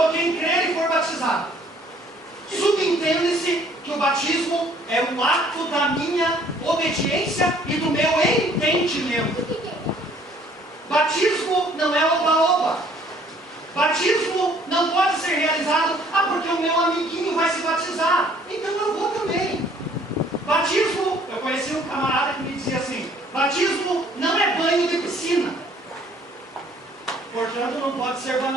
quem crer e for batizado. Subentende-se que o batismo é um ato da minha obediência e do meu entendimento. Batismo não é oba-oba. Batismo não pode ser realizado: porque o meu amiguinho vai se batizar, então eu vou também. Batismo, eu conheci um camarada que me dizia assim: batismo não é banho de piscina, portanto não pode ser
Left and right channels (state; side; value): normal; both; correlation 0.59